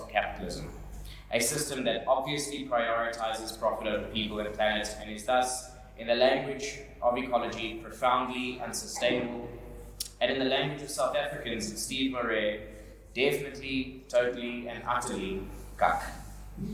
capitalism, a system that obviously prioritizes profit over people and planet and is thus, in the language of ecology, profoundly unsustainable, and in the language of South Africans and Steve Marais, definitely, totally, and utterly cuck.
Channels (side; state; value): both; identical; correlation 1.00